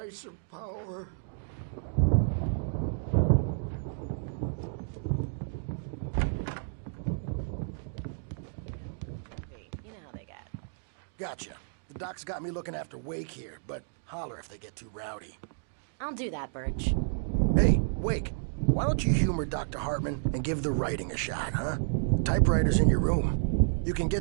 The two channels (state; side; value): silent; left; digital silence